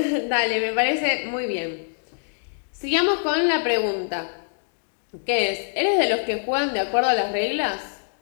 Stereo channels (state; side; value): silent; right; digital silence